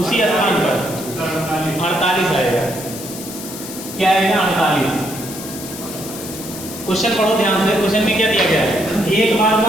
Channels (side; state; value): left; noise; hiss, 11 dB below the sound